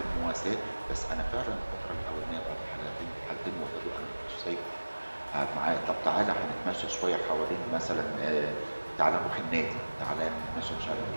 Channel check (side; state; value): both; inverted; correlation -1.00